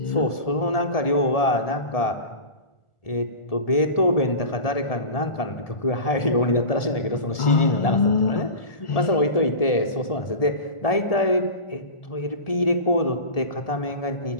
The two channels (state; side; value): late; right; 1.7 ms